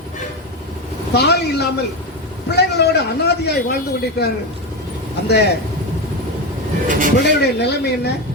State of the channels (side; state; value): both; normal; correlation 0.15